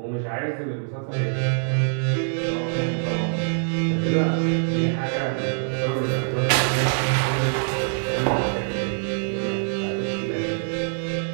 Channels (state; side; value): silent; left; digital silence